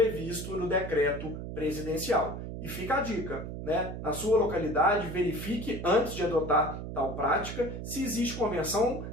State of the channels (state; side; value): noise; right; hum, 7 dB below the sound